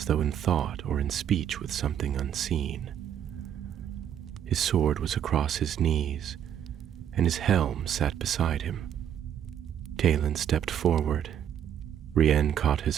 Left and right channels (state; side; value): quieter; left; 9.6 dB